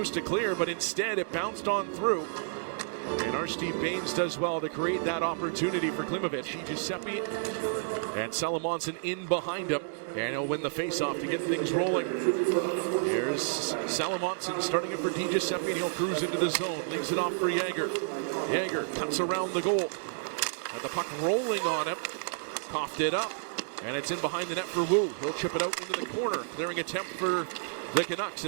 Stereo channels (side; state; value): left; silent; digital silence